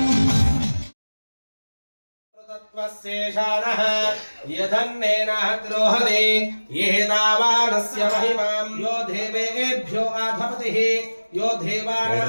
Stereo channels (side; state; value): both; inverted; correlation -1.00